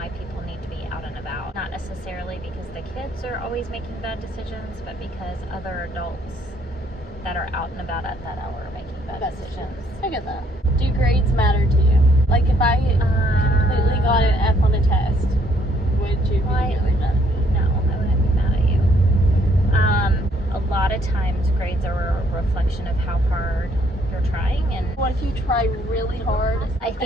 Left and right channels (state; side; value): normal; both; correlation 0.67